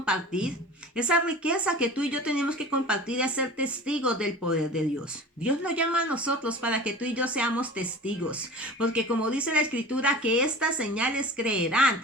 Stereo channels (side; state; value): both; normal; correlation 0.38